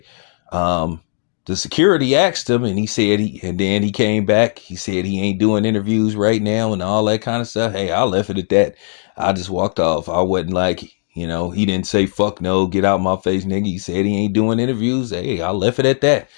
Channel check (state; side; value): silent; right; digital silence